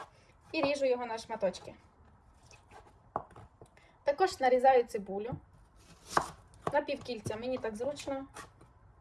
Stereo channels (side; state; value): both; identical; correlation 1.00